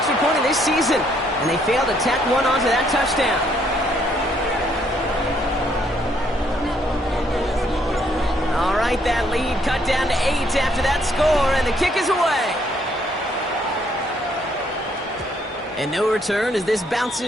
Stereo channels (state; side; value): normal; both; correlation 0.69